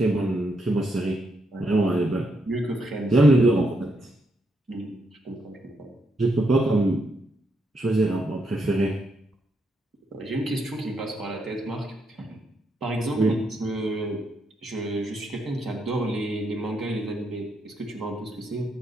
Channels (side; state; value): both; normal; correlation 0.79